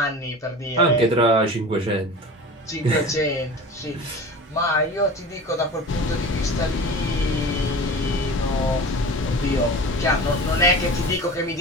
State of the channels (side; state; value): both; normal; correlation 0.35